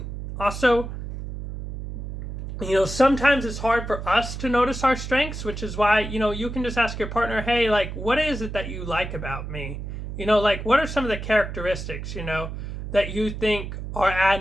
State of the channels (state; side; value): noise; right; hum, 7 dB below the sound